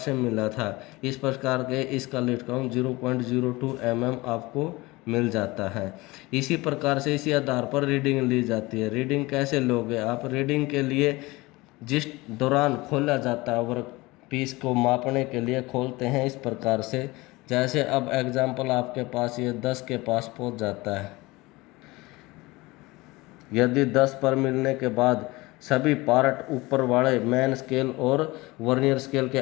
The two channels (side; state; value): right; quieter; 21.8 dB